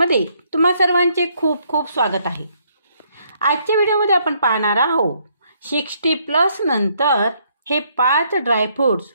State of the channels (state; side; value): inverted; both; correlation -0.70